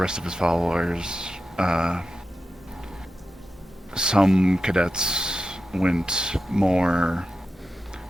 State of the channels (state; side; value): normal; both; correlation 0.90